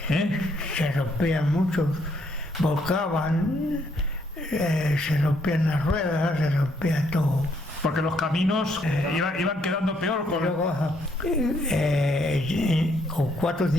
se rompían muchos, volcaban, se rompían las ruedas, se rompía todo. Porque los caminos iban quedando peor Y con... luego con 4 o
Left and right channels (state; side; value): normal; both; correlation 0.71